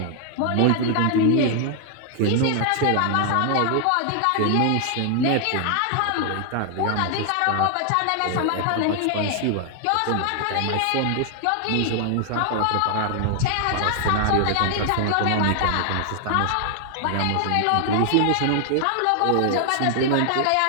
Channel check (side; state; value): both; different; correlation 0.00